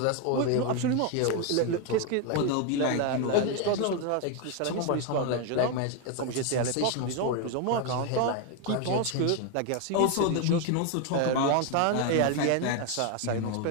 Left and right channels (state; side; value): different; both; correlation 0.01